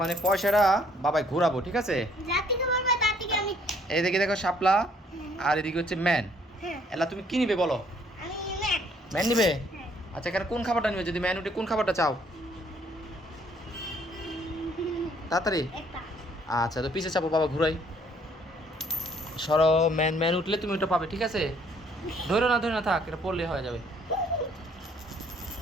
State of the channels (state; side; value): normal; both; correlation 0.63